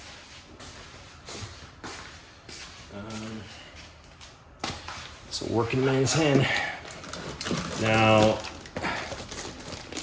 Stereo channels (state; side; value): identical; both; correlation 1.00